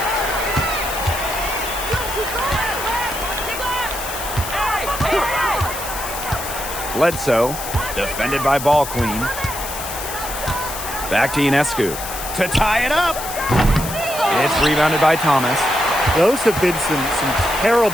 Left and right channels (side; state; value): left; noise; hiss, 8 dB below the sound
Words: Bledsoe, defended by Ball Queen. Back to Ionescu to tie it up. It's rebounded by Thomas. Those have been some